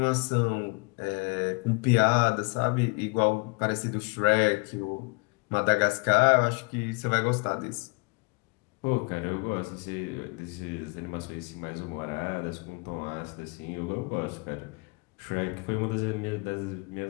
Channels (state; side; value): quieter; right; 31.3 dB